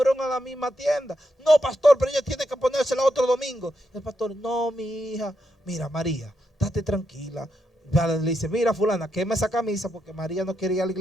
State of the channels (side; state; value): both; normal; correlation 0.83